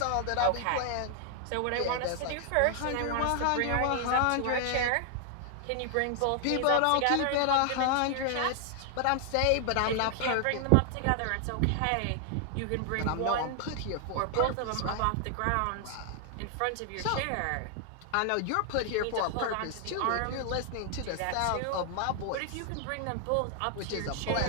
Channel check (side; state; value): both; different; correlation 0.00